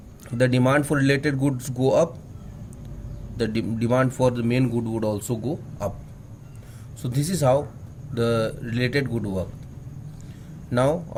the demand for related goods go up, the demand for the main good would also go up. So this is how the related good work. Now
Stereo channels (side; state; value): both; identical; correlation 1.00